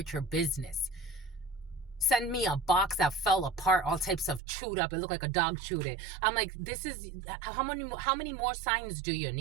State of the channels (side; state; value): left; drops out; at 4.4 s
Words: your business. Send me a box that fell apart, all types of chewed up. It looked like a dog chewed it. I'm like, this is, how many more signs do you